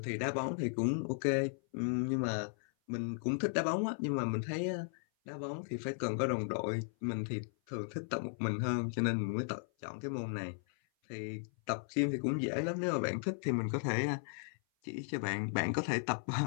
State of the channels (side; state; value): right; silent; 54 dB below the other